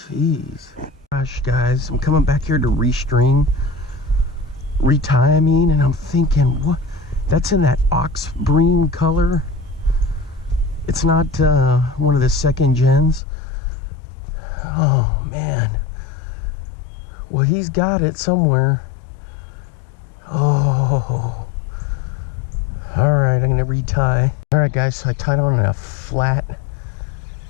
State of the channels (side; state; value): right; drops out; at 13.2 s